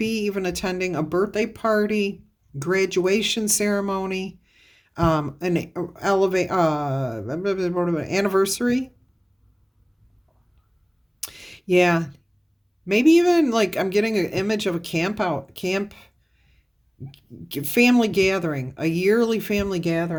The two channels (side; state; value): both; identical; correlation 1.00